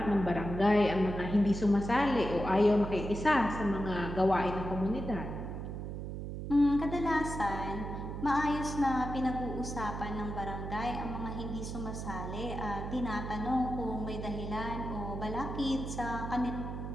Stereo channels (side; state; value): right; noise; hum, 6 dB below the sound